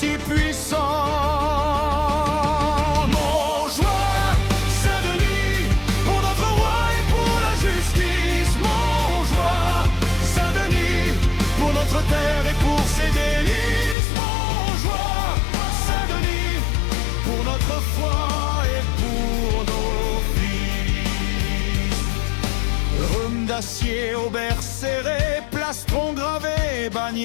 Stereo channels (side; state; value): right; drops out; at 14.0 s